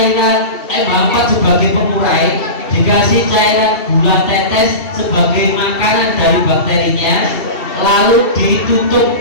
MH4 sebagai pengurai, dikasih cairan gula tetes sebagai makanan dari bakterinya, lalu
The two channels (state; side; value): late; right; 2.7 ms